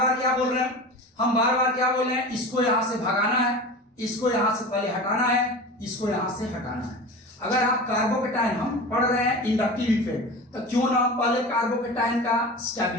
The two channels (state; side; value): normal; both; correlation 0.32